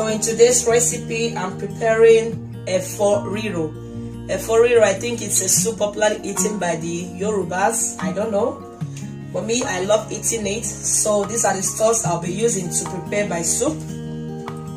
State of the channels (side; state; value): both; identical; correlation 1.00